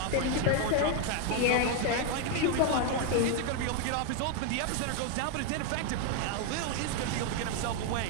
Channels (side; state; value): both; different; correlation 0.01